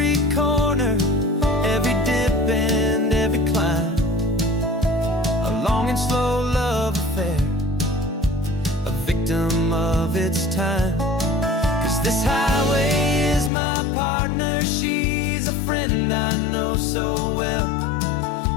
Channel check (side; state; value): right; drops out; at 13.5 s